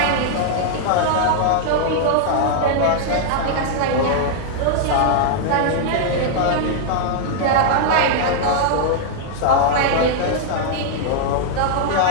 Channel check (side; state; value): both; different; correlation -0.01